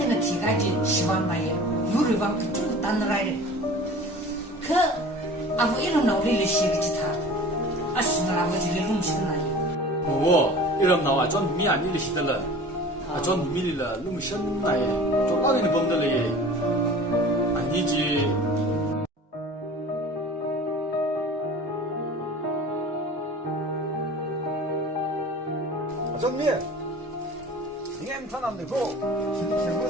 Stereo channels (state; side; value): normal; both; correlation 0.41